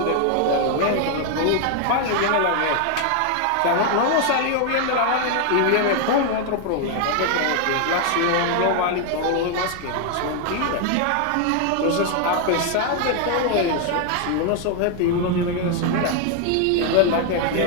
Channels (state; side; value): different; both; correlation 0.00